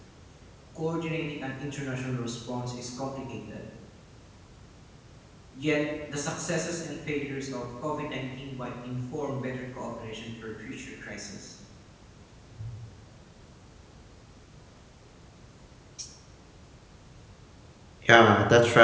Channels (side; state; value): both; identical; correlation 1.00